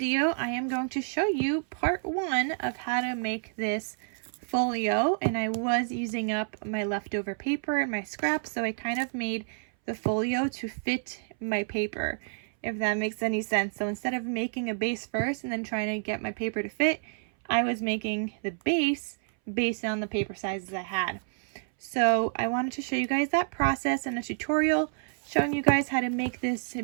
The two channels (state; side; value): silent; left; 59 dB below the other